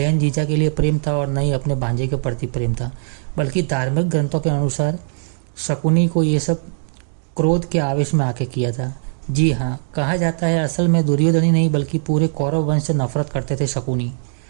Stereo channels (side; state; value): left; silent; digital silence